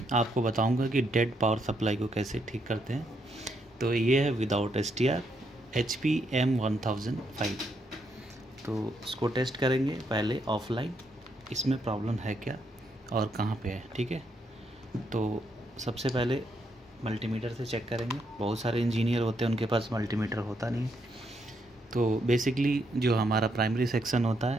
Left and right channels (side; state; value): both; normal; correlation 0.77